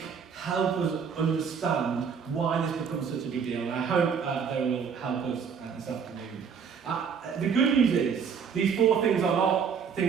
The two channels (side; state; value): left; quieter; 6.6 dB